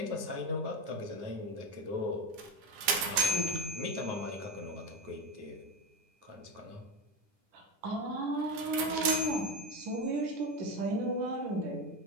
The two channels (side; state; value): left; late; 10 ms